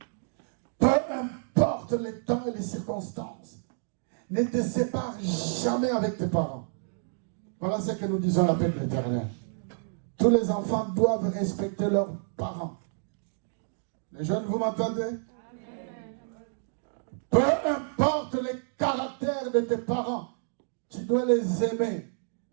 Peu importe les temps et les circonstances. Ne te sépare jamais avec tes parents. Voilà ce que nous disons à l'appel de l'Éternel. Tous les enfants doivent respecter leurs parents. Les jeunes, vous m'entendez? Peu importe le caractère de tes parents, tu dois les aimer,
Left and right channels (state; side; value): silent; left; digital silence